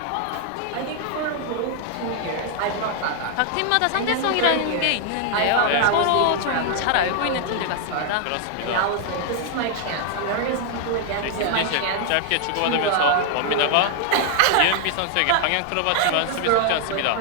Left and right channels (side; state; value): both; different; correlation 0.00